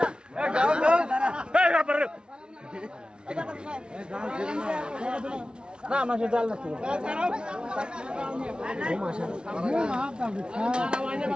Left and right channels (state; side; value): late; left; 0.055 ms